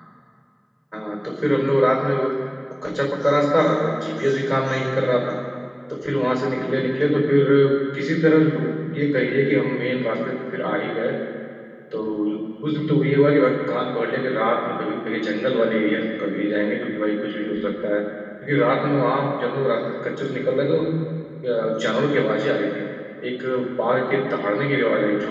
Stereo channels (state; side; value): identical; both; correlation 1.00